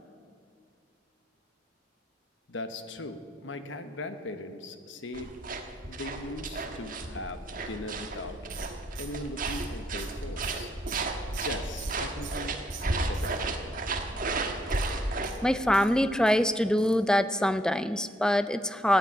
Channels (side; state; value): both; normal; correlation 0.72